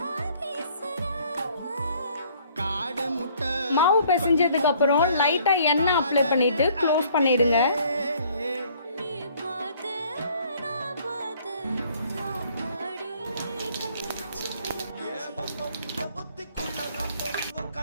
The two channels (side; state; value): both; inverted; correlation -0.59